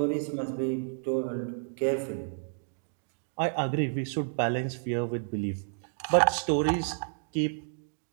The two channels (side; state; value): left; silent; digital silence